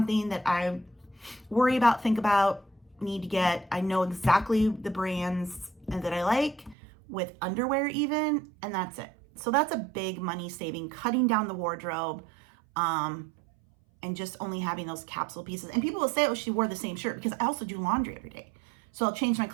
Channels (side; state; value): left; drops out; at 6.8 s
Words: that I worry about, think about, need to get. I know exactly the brands that I like, with underwear even, and that's it. So that's a big money saving, cutting down the wardrobe, and just only having those capsule pieces. And people will say, oh, she wore the same shirt, because I also do laundry every day. So I'll change my